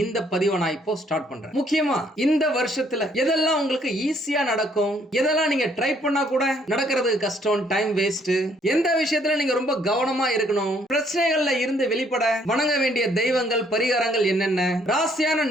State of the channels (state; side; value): normal; both; correlation 0.66